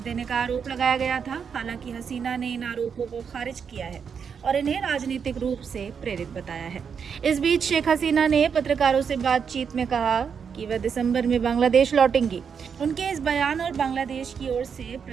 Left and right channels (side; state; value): left; quieter; 6.7 dB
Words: का आरोप लगाया गया था। हालांकि हसीना ने इन आरोपों को खारिज किया है और इन्हें राजनीतिक रूप से प्रेरित बताया है। इस बीच शेख हसीना ने पत्रकारों से बातचीत में कहा कि वह दिसंबर में बांग्लादेश लौटेंगी। उनके इस बयान और बांग्लादेश की ओर से